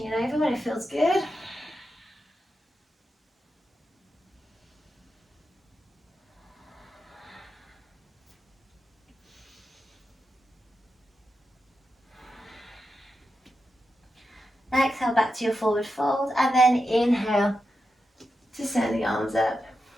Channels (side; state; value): both; normal; correlation 0.88